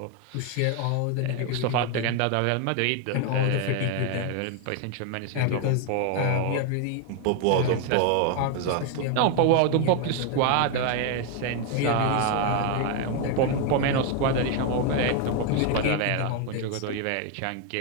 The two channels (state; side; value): different; both; correlation 0.01